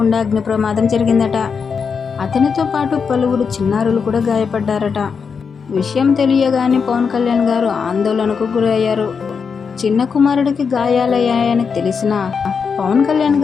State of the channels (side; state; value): right; quieter; 5.9 dB